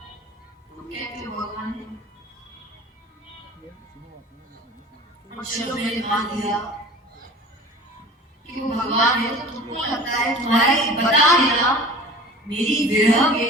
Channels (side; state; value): both; normal; correlation 0.40